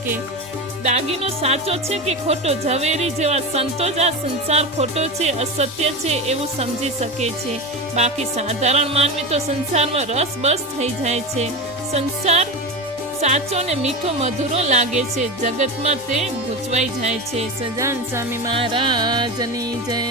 દાગીનો સાચો છે કે ખોટો, ઝવેરી જેવા સંતો જ આ સંસાર ખોટો છે, અસત્ય છે એવું સમજી શકે છે. બાકી સાધારણ માનવી તો સંસારમાં રસ બસ થઈ જાય છે. સંસાર સાચો ને મીઠો મધુરો લાગે છે, જગતમાં તે ગૂંચવાઈ જાય છે. સજાન સ્વામી મહારાજની જય.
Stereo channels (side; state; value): left; noise; hum, 30 dB below the sound